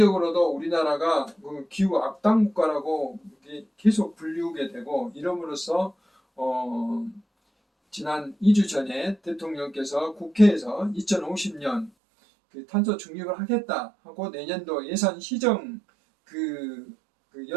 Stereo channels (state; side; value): drops out; left; at 11.9 s